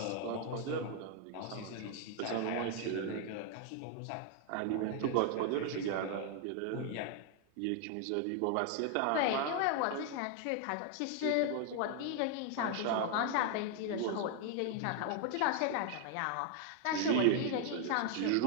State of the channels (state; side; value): different; both; correlation 0.00